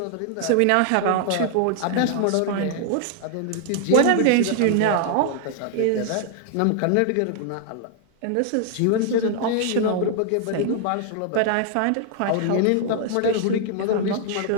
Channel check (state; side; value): different; both; correlation 0.00